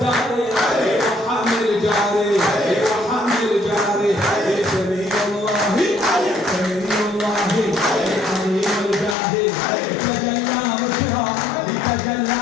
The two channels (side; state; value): right; drops out; at 9.2 s